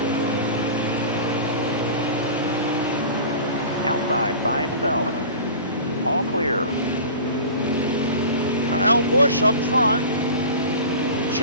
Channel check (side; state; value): both; inverted; correlation -0.37